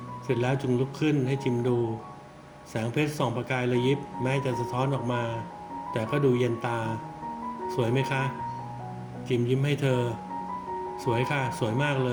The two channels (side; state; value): both; identical; correlation 1.00